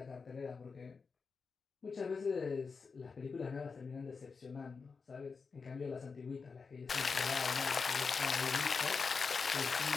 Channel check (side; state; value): right; quieter; 5.0 dB